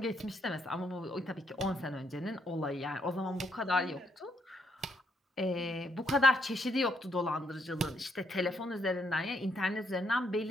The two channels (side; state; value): both; normal; correlation 0.75